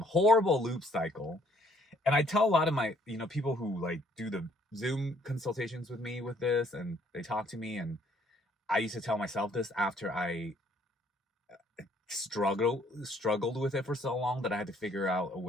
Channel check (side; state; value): both; normal; correlation 0.64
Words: loop cycle. And I tell a lot of my, people who like do the Zoom consultations with me with this, and they talk to me, and I used to tell myself this after I struggled with it for so long that I had to figure out a